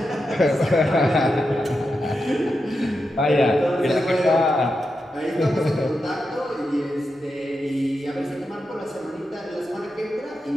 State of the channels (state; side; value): normal; both; correlation 0.88